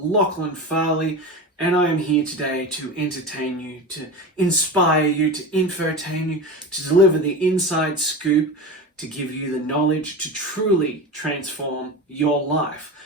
Farley, and I am here today to entertain you, to inspire you, to infotain you, to deliver the inside scoop, to give you the knowledge to truly transform your life.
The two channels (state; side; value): normal; both; correlation 0.27